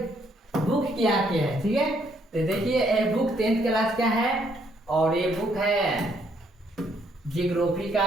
बुक क्या है, ठीक है, तो देखिए ये बुक 10th क्लास का है और ये बुक है जियोग्राफी का।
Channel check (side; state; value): both; normal; correlation 0.70